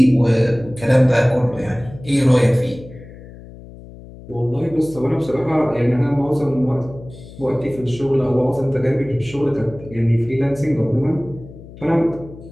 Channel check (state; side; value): noise; left; hum, 17 dB below the sound